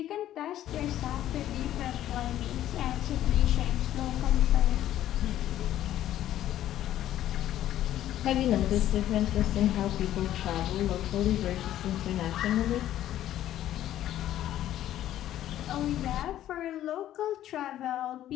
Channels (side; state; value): right; quieter; 12.5 dB